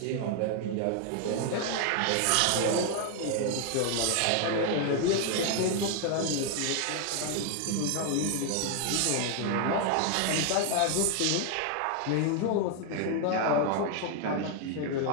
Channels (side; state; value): both; different; correlation 0.01